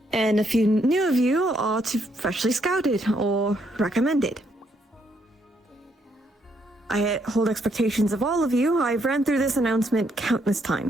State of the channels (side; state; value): both; normal; correlation 0.73